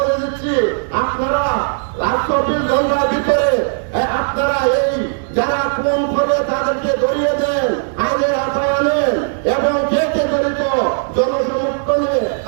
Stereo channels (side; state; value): left; silent; 67 dB below the other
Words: দিচ্ছি, আপনারা 24 ঘন্টার ভিতরে আপনারা এই যারা খুন করবে তাদেরকে ধরিয়ে দেন, আইনের আওতায় আনেন এবং কে কে জড়িত জনসমর্থনে